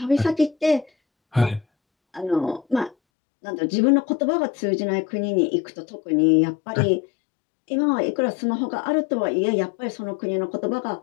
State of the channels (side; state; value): right; drops out; at 3.0 s